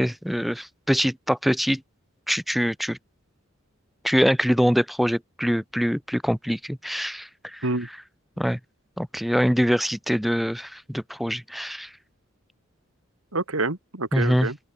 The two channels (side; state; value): both; normal; correlation 0.93